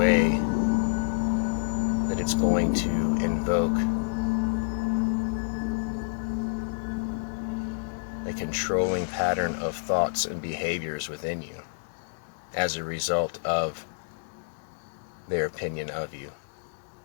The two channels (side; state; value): right; silent; digital silence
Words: that it's going to invoke a controlling pattern of thoughts and behaviors within you as a result of their opinion of you.